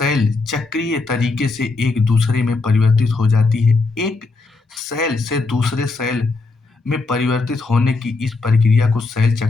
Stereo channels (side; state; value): right; quieter; 3.7 dB